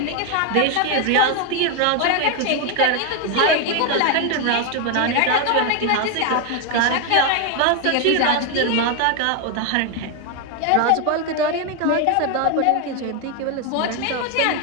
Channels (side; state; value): both; different; correlation 0.01